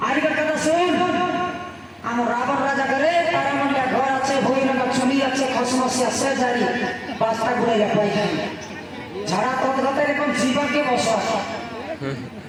আর কথা শুন আমার রাবণ রাজা করে তার মন্ডা ঘর আছে ভৈরঙ্গা চুলি আছে খসমসি আছে জারি বাস্তা ঘুরে যা পাইখান ঝাড়া তৎগত এরকম জীবনকে বসা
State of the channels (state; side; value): identical; both; correlation 1.00